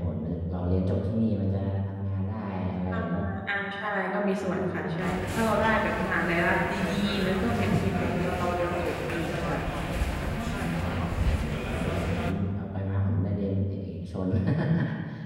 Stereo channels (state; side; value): identical; both; correlation 1.00